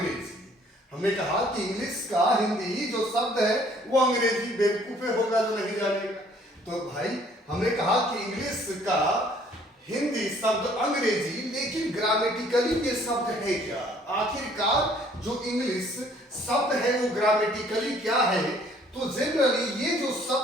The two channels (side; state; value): both; normal; correlation 0.59